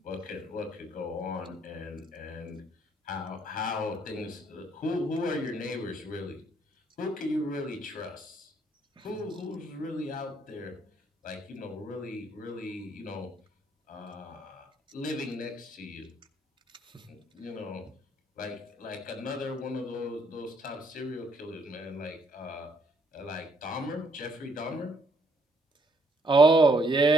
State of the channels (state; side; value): normal; both; correlation 0.68